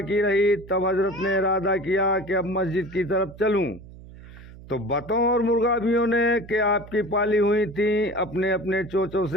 रही तब हजरत ने इरादा किया कि अब मस्जिद की तरफ चलूं, तो बतों और मुर्गाबियों ने कि आपकी पाली हुई थी अपने अपने चोचों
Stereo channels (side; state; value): right; noise; hum, 18 dB below the sound